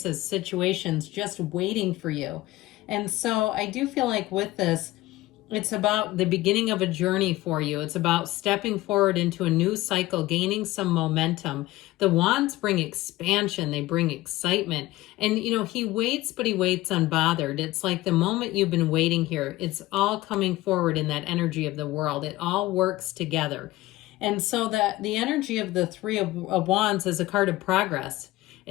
situations just waiting for you. And so I do feel like with this, it's about the beginning of a journey for you. It's about stepping forward into a new cycle, gaining some momentum. The wands bring expansion. They bring excitement. And, you know, he waits, but he waits unbothered. It's like the moment you've been waiting here, it's all coming forward in that energy of the world. It all works together. And so that the energy of the Three of Wands is a card of progress.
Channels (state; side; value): quieter; right; 17.9 dB